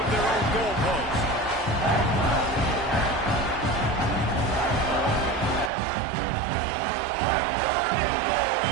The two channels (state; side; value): drops out; left; at 5.7 s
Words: their own goal post. On 3rd and goal,